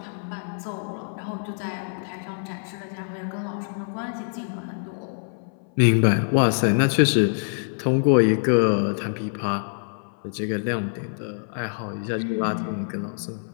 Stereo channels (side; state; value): right; silent; 62 dB below the other